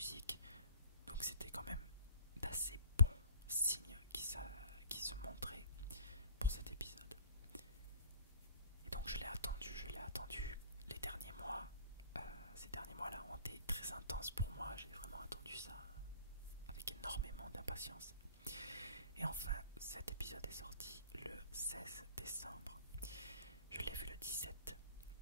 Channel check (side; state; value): both; inverted; correlation -0.49